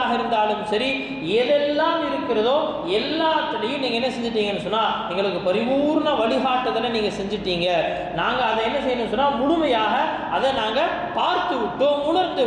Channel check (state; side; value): identical; both; correlation 1.00